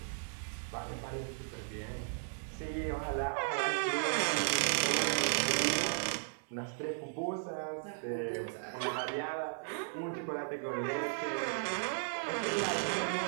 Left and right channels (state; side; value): silent; left; digital silence